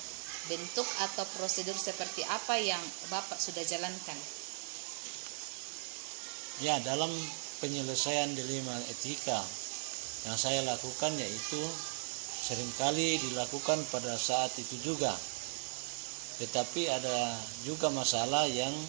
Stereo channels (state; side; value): silent; left; digital silence